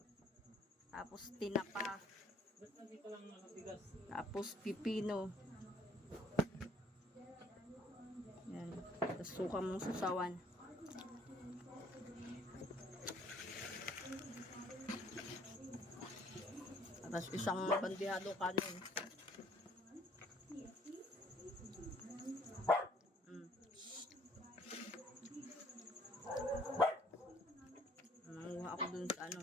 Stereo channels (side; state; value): both; normal; correlation 0.60